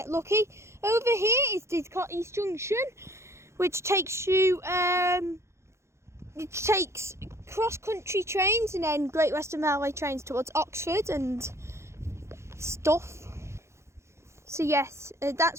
lucky. Over here is Didcot East Junction, which takes you, it takes cross country trains and then Great Western Railway trains towards Oxford and stuff. So yes,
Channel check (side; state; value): left; late; 0.13 ms